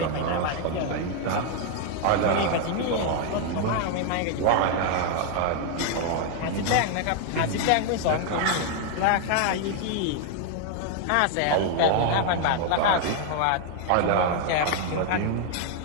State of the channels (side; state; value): both; different; correlation 0.00